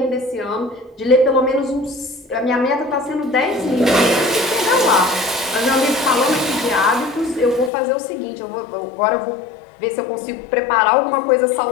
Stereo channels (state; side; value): drops out; right; at 7.7 s